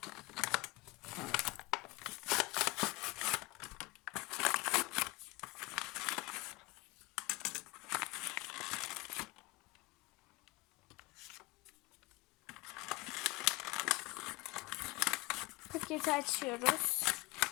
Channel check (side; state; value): right; quieter; 22.4 dB